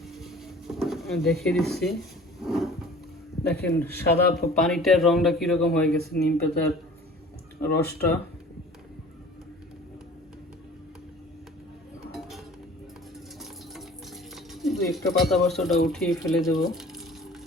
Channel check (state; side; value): normal; both; correlation 0.46